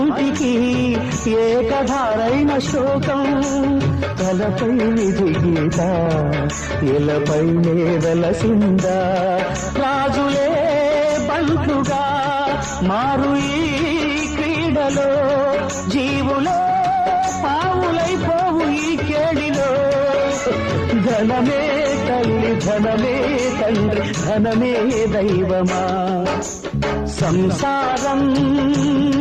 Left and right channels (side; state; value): both; identical; correlation 1.00